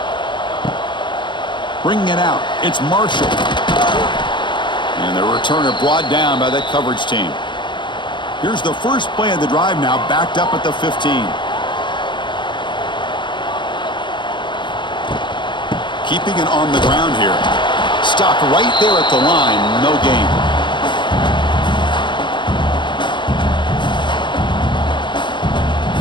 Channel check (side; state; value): right; late; 0.23 ms